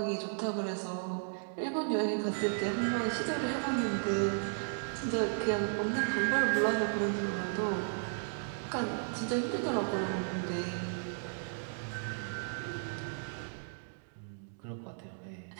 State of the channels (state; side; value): silent; left; digital silence